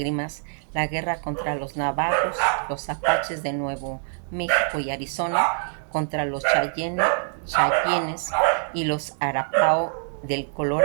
la guerra contra los navajos, los apaches de Nuevo México y Arizona, contra los Cheyennes y los Arapao del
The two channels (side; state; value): left; silent; 62 dB below the other